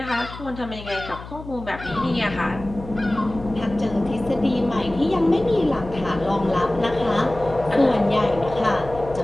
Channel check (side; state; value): left; noise; hum, 14 dB below the sound